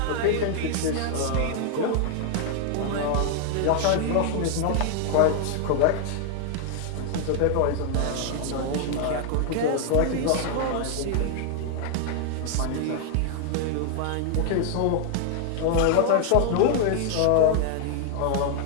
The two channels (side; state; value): both; different; correlation 0.00